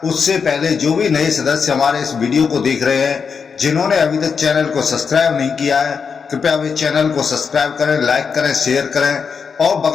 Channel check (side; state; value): right; quieter; 6.0 dB